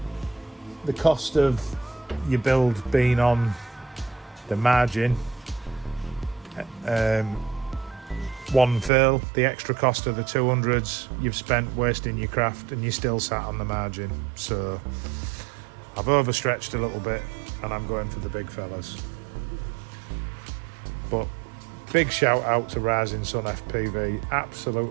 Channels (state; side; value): drops out; left; at 8.9 s